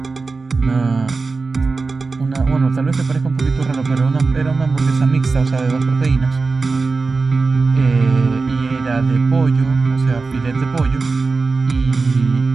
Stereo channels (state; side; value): quieter; left; 4.1 dB